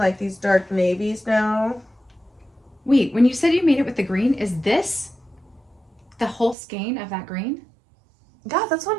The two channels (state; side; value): drops out; left; at 6.6 s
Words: these dark navies now. Wait, when you said you made it with the green, is this the whole skein of that green? Yeah, that's what